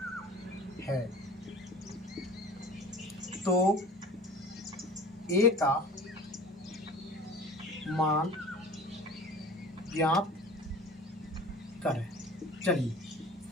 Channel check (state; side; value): normal; both; correlation 0.41